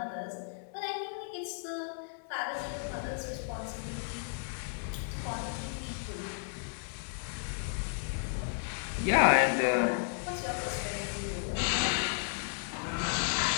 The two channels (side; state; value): right; silent; 55 dB below the other